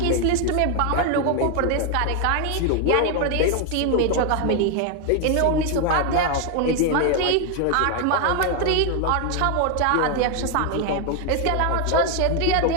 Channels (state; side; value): different; both; correlation 0.01